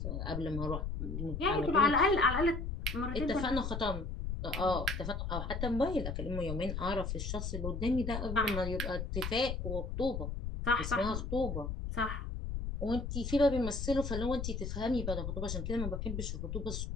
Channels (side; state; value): left; noise; rumble, 4 dB below the sound